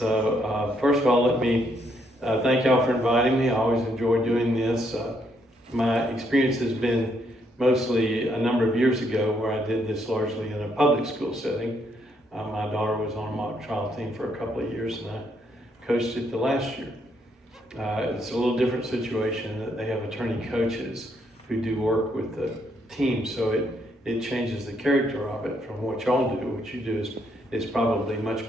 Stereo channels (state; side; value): normal; both; correlation 0.74